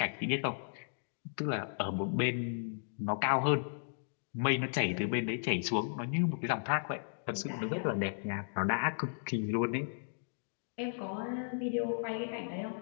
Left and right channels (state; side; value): silent; right; digital silence